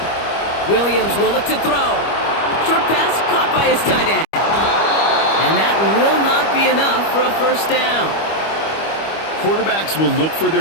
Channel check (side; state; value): right; late; 25 ms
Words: Williams will look to throw. Short pass caught by his tight end. And that will not be enough for a first down. Quarterbacks will look for